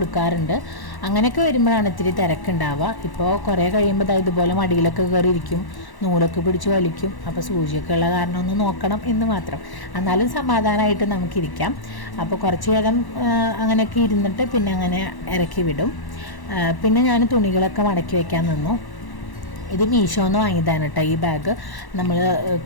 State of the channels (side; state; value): right; late; 1.1 ms